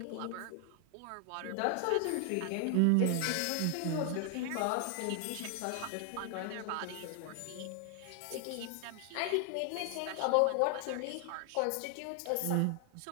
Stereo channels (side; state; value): both; different; correlation 0.00